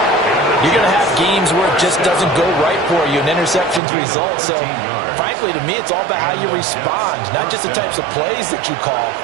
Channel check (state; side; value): drops out; left; at 3.8 s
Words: you're going to have games where it just doesn't go right for you, and interceptions result. So, frankly, to me, it's all about how you respond, not just the types of plays that you call,